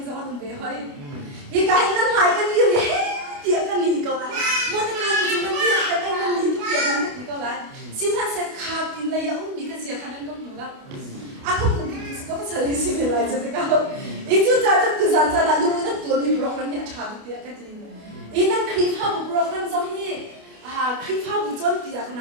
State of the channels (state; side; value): late; left; 28 ms